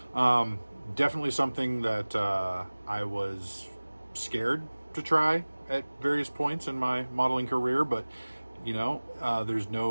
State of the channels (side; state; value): both; inverted; correlation -1.00